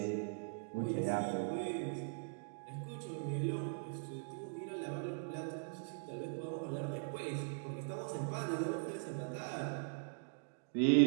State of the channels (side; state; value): left; silent; digital silence